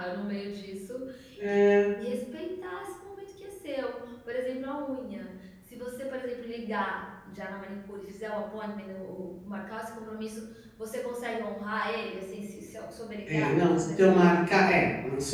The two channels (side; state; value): both; identical; correlation 1.00